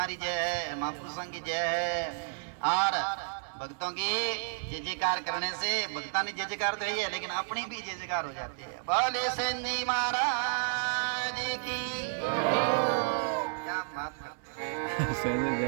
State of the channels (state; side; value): silent; left; 57 dB below the other